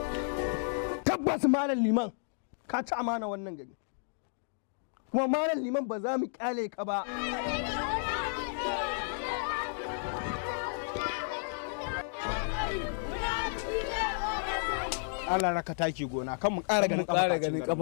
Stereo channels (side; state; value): right; silent; digital silence